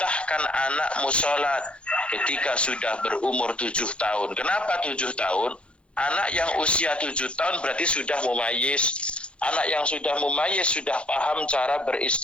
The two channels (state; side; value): late; right; 0.059 ms